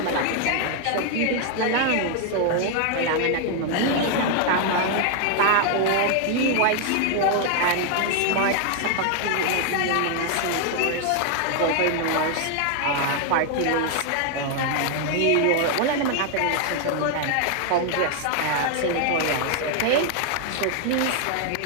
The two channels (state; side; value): different; both; correlation 0.00